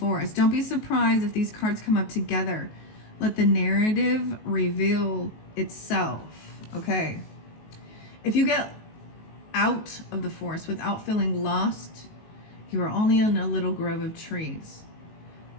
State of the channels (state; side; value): late; right; 19 ms